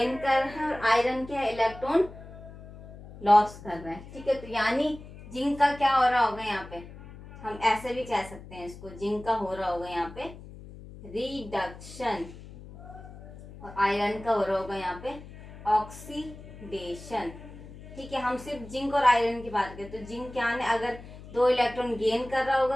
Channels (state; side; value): noise; left; hum, 16 dB below the sound